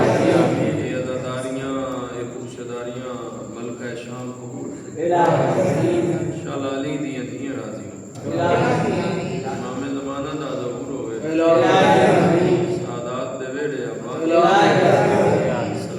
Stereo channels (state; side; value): identical; both; correlation 1.00